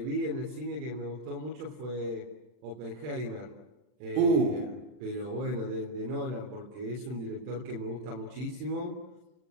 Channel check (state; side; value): late; left; 40 ms